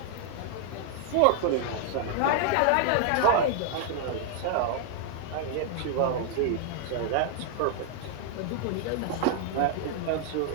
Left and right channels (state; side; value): different; both; correlation 0.00